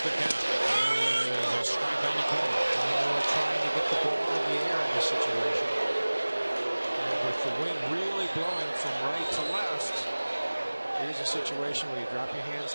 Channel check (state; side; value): inverted; both; correlation -1.00